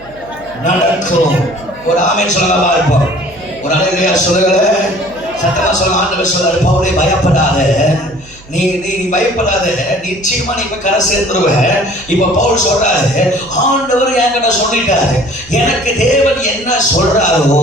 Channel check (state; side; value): noise; right; hum, 23 dB below the sound